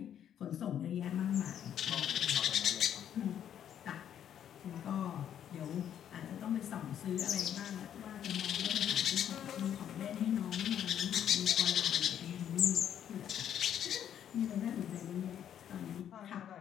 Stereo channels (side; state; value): right; quieter; 9.8 dB